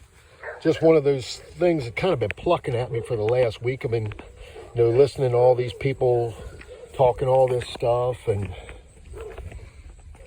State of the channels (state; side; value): identical; both; correlation 1.00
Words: just one of those things that kind of been plucking at me for the last week. I've been listening to all these people talking all this stuff, and